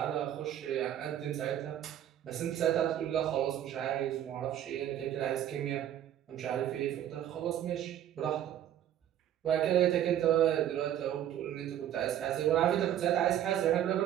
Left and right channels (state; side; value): quieter; left; 11.1 dB